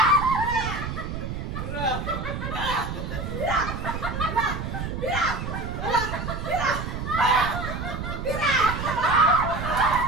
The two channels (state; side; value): noise; right; rumble, 5 dB below the sound